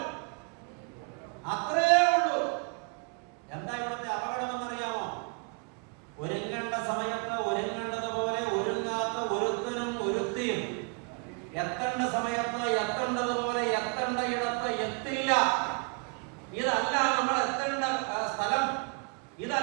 അത്രയേ ഉള്ളൂ. എന്താ ഇവിടുത്തെ അപകടമെന്നറിയാമോ? ഒരുങ്ങേണ്ട സമയത്ത് ഒരുങ്ങേണ്ടതുപോലെ ഒരുങ്ങാത്ത ഒരുത്തനും ഒരുത്തിയും എത്തേണ്ട സമയത്ത് എത്തേണ്ടതുപോലെ എത്തേണ്ട ഇടത്ത് എത്തില്ല. ഇതല്ല നമ്മൾ എത്തേണ്ട സ്ഥലം,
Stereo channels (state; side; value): quieter; left; 34.3 dB